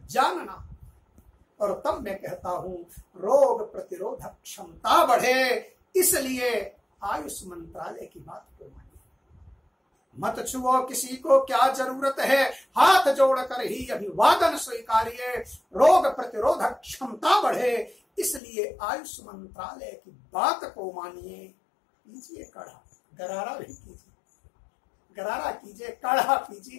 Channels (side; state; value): right; drops out; at 18.4 s